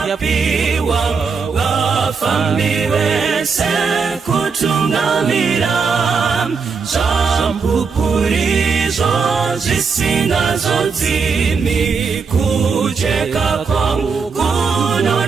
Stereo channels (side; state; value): left; quieter; 5.3 dB